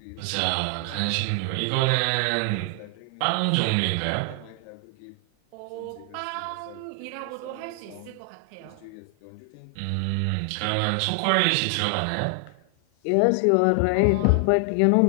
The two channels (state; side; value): different; both; correlation 0.00